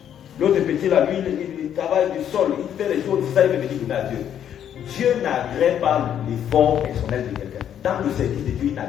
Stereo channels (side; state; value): right; quieter; 9.7 dB